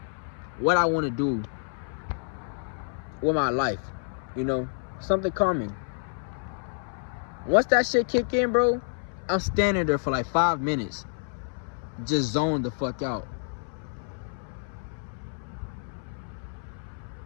what I want to do with my life, you know? Something common. Once that shit kick in, bro, I'm standing there for like 5 minutes. Just zoned the fuck out.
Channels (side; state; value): right; silent; 59 dB below the other